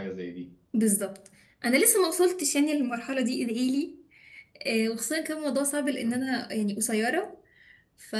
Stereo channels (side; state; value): both; identical; correlation 1.00